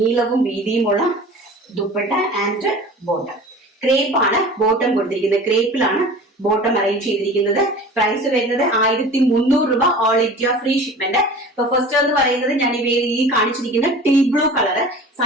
വീതിയുമുള്ള ദുപ്പട്ട ആൻഡ് ബോട്ടം. ക്രേപ്പ് ആണ് ബോട്ടം കൊടുത്തിരിക്കുന്നത്. ക്രേപ്പിലാണ് ബോട്ടം അറേഞ്ച് ചെയ്തിരിക്കുന്നത്. പ്രൈസ് വരുന്നത് 1300 രൂപ. All India free shipment. ഇപ്പൊ ഫസ്റ്റ് എന്ന് പറയുന്നത് ഞാൻ ഈ കാണിച്ചിരിക്കുന്ന ടീ ബ്ലൂ കളർ.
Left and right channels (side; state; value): both; normal; correlation 0.40